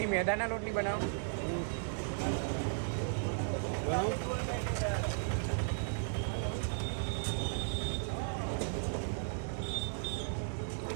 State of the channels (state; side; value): silent; left; 54 dB below the other